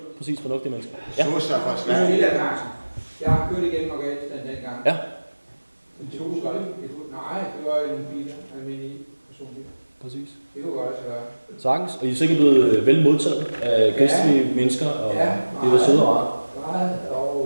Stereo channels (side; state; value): both; inverted; correlation -1.00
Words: præcis fornuftige mennesker. Ja. Så fra Det er Sverige. Lilla Carlsen. Jeg har kørt igennem Afghanistan dengang. Ja. En 2 skole. Nej, det var i nogle biler, almindelige personbiler. Præcis. Det kunne godt være. Sagtens, og I er sikkert blevet vel modtaget af gæstlige mennesker, og det var søde og rart. Meget